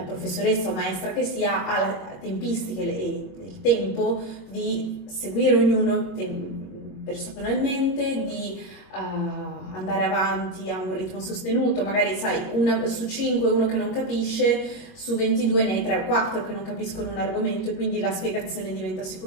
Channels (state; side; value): late; right; 21 ms